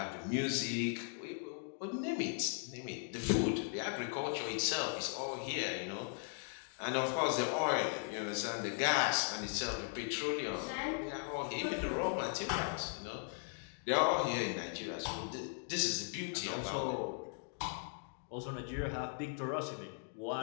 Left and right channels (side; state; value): right; silent; 52 dB below the other